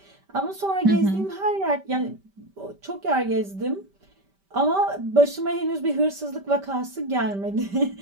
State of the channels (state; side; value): late; left; 5.1 ms